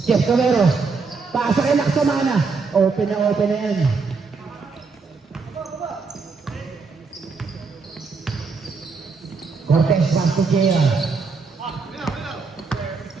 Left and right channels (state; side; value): quieter; left; 4.6 dB